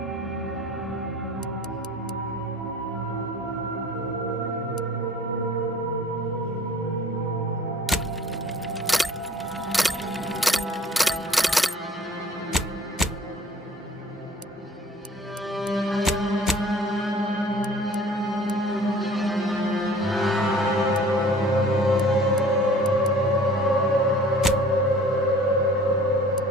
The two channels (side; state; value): both; normal; correlation 0.50